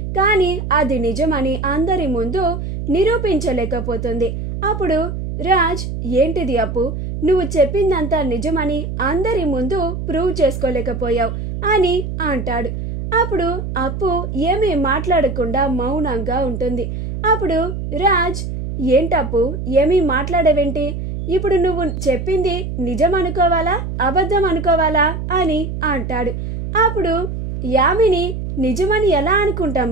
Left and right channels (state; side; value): noise; right; hum, 5 dB below the sound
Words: కానీ అది నిజమని అందరి ముందు నిరూపించలేకపోతుంది. అప్పుడు రాజ్, ఏంటిది అప్పు, నువ్వు చెప్పిందంతా నిజమని అందరి ముందు ప్రూవ్ చేసుకోలేకపోయావు అని అంటాడు. అప్పుడు అప్పు ఏమీ మాట్లాడకుండా మౌనంగా ఉంటుంది. అప్పుడు రాజ్, ఏంటప్పు ఏమీ మాట్లాడవేంటి, ఇప్పుడు నువ్వు చెప్పింది నిజం అనుకోవాలా అబద్ధం అనుకోవాలా అని అంటాడు. అప్పుడు యామిని, నిజమని ఎలా అనుకుంటాం